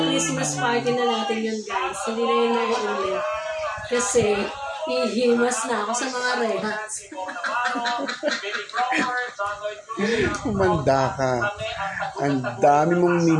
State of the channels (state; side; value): identical; both; correlation 1.00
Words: Christmas party na natin yun, guys. Hindi na yun nag-ulit. Kasi, hihimas na ako sa mga rehas. Umanda ka. Ang dami mong